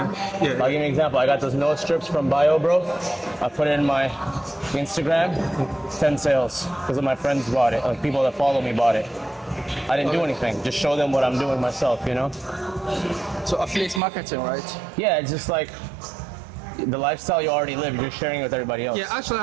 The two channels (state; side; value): drops out; left; at 14.0 s